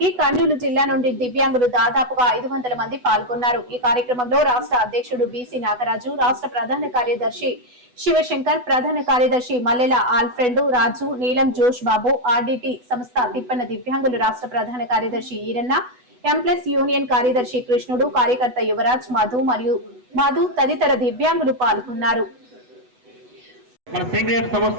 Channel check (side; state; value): left; late; 8.1 ms